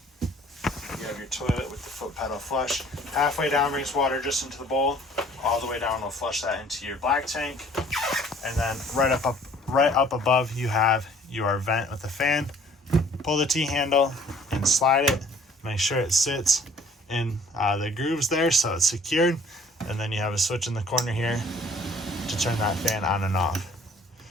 You have your toilet with the foot pedal flush. Halfway down brings water just into the bowl. All the way down will flush that into your black tank. And then right up above, you have your vent with the fan. Pull the T-handle and slide it. Make sure it sits in the grooves there so it's secured. And then you have a switch in the corner here to turn that fan on and off.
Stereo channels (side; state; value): both; normal; correlation 0.55